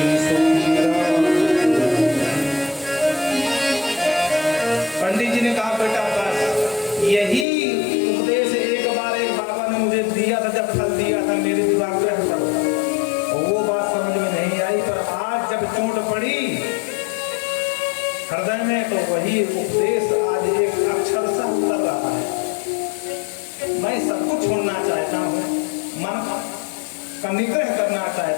सुखी रहा। पंडित जी ने कहा बेटा बस यही उपदेश एक बार एक बाबा ने मुझे दिया था, जब फल दिया था मेरे दिमाग में हटा, वो बात समझ में नहीं आई, पर आज जब चोट पड़ी हृदय में तो वही उपदेश आज एक अक्षर सा उतर रहा है। मैं सब कुछ छोड़ना चाहता हूँ, मन का निग्रह करना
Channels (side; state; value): right; drops out; at 7.5 s